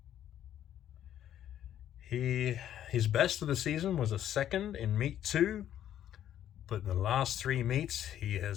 His best of the season was a second in meet 2, but in the last 3 meets, he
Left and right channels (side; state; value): right; quieter; 11.0 dB